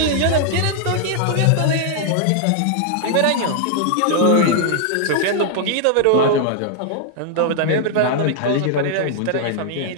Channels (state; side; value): different; both; correlation 0.00